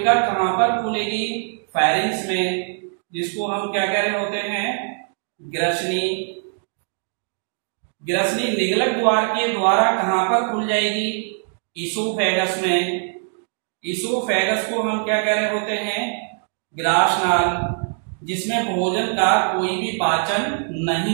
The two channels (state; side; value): silent; left; 61 dB below the other